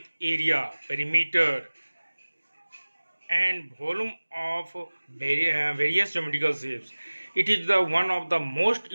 area, perimeter, and volume of various geometrical shapes. It is the one of the most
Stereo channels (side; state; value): both; inverted; correlation -1.00